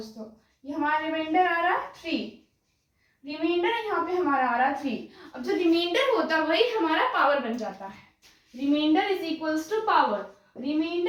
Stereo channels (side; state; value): both; identical; correlation 1.00